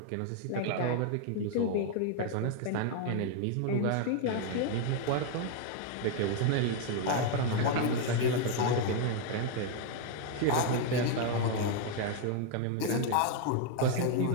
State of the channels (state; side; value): different; both; correlation 0.00